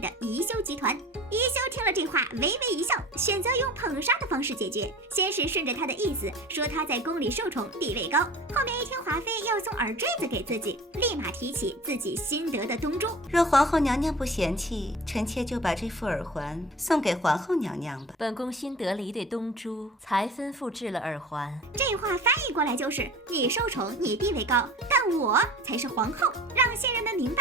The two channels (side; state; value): both; normal; correlation 0.40